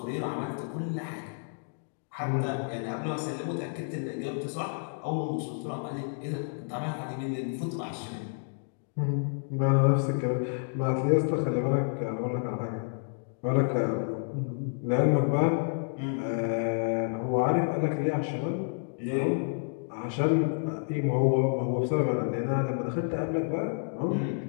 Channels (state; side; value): silent; right; digital silence